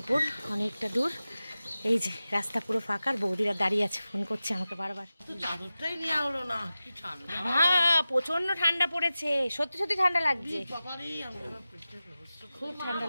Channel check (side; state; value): both; inverted; correlation -0.95